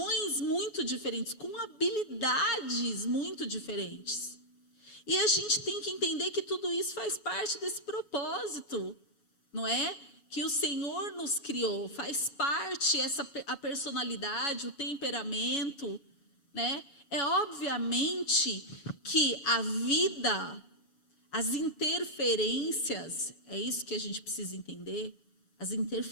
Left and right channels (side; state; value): right; late; 7.1 ms